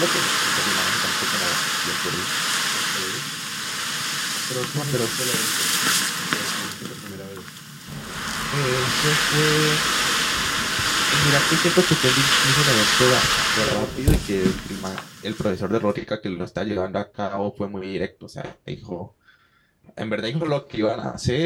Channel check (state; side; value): identical; both; correlation 1.00